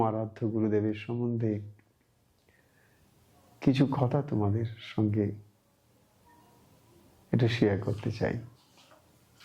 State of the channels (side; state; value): both; identical; correlation 1.00